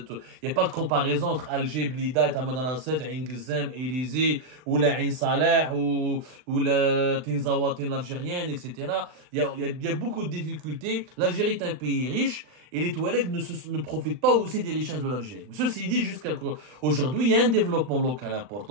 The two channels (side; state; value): left; late; 39 ms